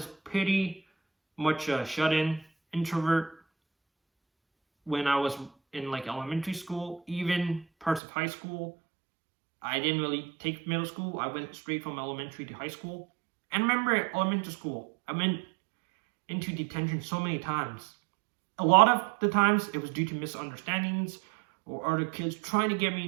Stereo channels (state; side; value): drops out; left; at 8.0 s